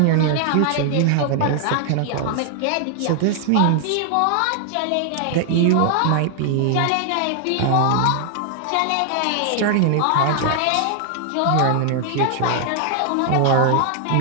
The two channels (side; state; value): both; different; correlation 0.00